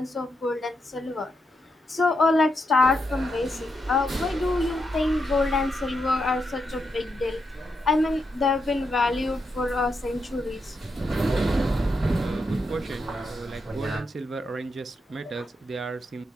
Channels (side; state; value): both; normal; correlation 0.83